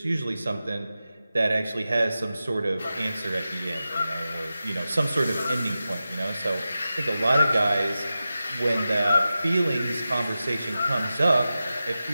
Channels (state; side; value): inverted; both; correlation -0.93